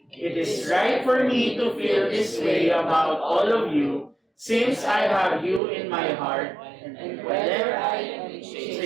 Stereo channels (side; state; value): left; drops out; at 5.6 s